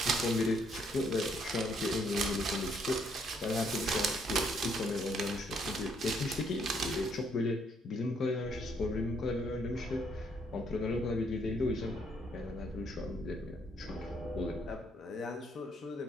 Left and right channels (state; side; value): normal; both; correlation 0.70